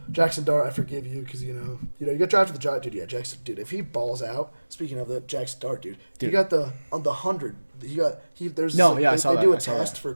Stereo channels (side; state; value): both; inverted; correlation -1.00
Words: Jackson Dart. I forgive you because you got drafted the Giants, dude. Yeah, Jackson, dude. If he balls out, speaking of the Jackson Dart, dude, he got on the 100. There's No, like, yeah, I they, saw they that, do a I saw test that. for